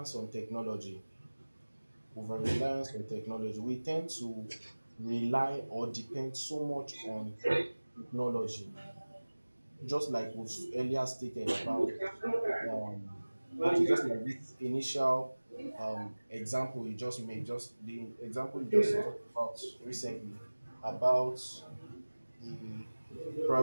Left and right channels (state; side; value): inverted; both; correlation -1.00